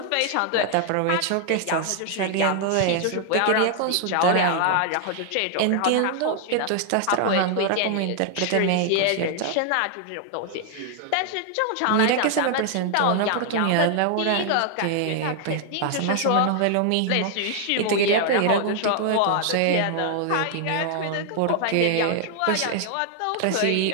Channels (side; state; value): both; different; correlation 0.00